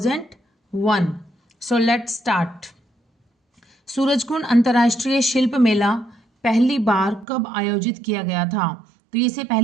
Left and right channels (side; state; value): left; drops out; at 7.2 s